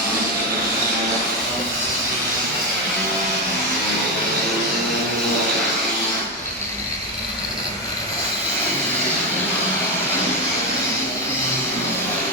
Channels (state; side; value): normal; both; correlation 0.11